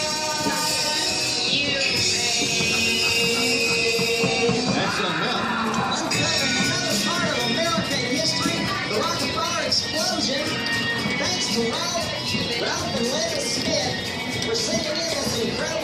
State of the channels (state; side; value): identical; both; correlation 1.00